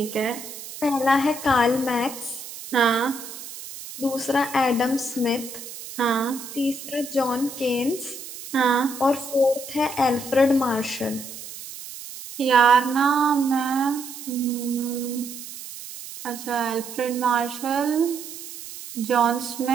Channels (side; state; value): right; noise; hiss, 12 dB below the sound